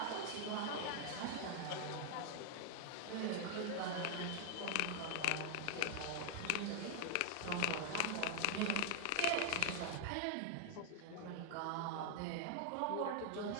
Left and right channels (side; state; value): both; different; correlation 0.00